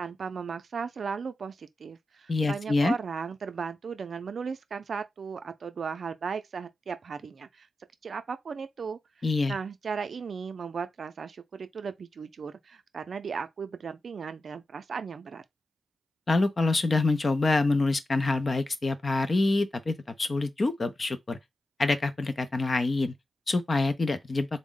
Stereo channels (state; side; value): normal; both; correlation 0.91